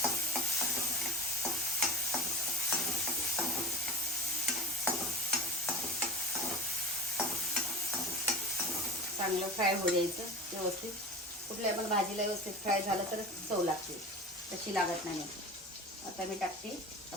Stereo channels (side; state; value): both; normal; correlation 0.34